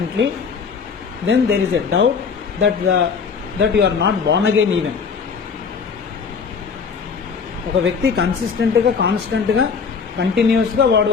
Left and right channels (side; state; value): right; quieter; 5.7 dB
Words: then there is a doubt that you are not born again even. ఒక వ్యక్తి కన్సిస్టెంట్గా కాన్స్టెంట్గా కంటిన్యూస్గా వాడు